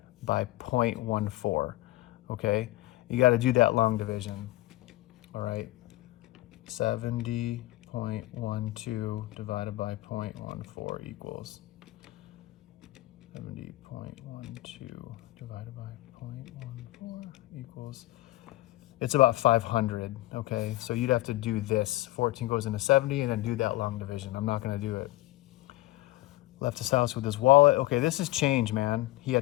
by 0.14, okay? You gotta do that long division, all right? 70.12 divided by 0.14 equals 70.12 divided by 0.14 equals, it's about 500, okay? So you'd have to do this. 14 goes into 70 and then do that long division. I'm not gonna do it. Left his house with his wallet. Okay, this is change, man. He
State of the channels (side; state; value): right; quieter; 18.1 dB